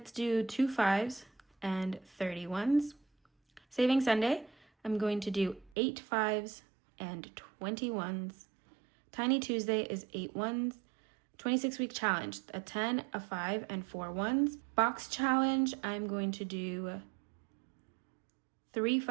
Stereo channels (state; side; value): drops out; left; at 5.7 s